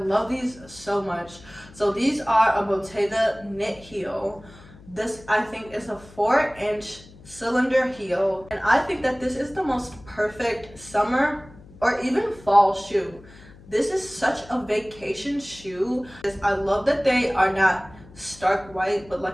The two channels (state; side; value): noise; left; hum, 21 dB below the sound